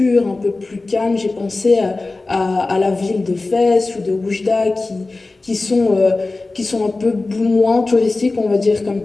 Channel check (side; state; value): right; quieter; 3.3 dB